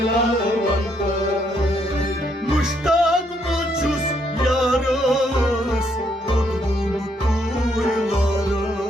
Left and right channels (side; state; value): both; normal; correlation 0.73